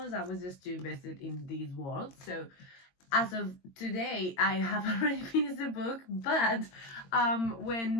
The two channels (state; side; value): late; right; 22 ms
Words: I was just too invested in these worlds. So as of today, I have already finished the book, but